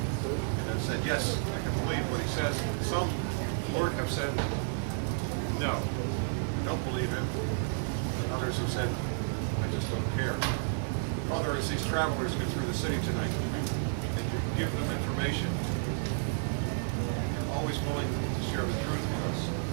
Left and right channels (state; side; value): silent; left; digital silence